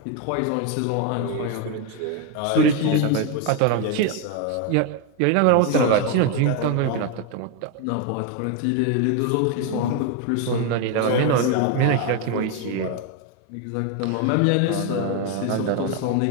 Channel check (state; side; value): different; both; correlation 0.01